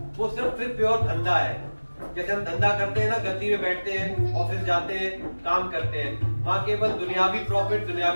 वो सिर्फ फिर प्योर धंधा है। जैसे हम धंधा करते हैं ना, गद्दी में बैठते हैं, ऑफिस जाते हैं, काम करते हैं, वहां केवल दुनियावी प्रॉफिट,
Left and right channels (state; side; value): inverted; both; correlation -1.00